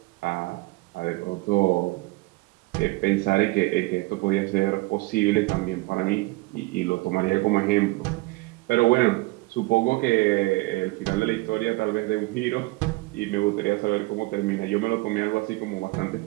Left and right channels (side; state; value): left; quieter; 22.4 dB